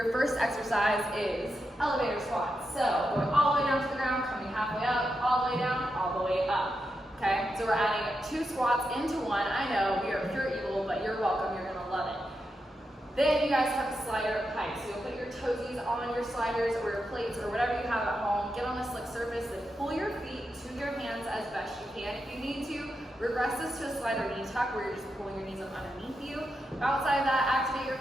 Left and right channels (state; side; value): normal; both; correlation 0.86